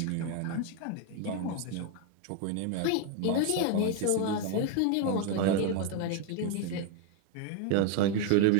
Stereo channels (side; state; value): both; different; correlation 0.01